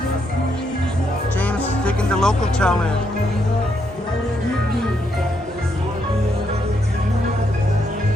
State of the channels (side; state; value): both; normal; correlation 0.77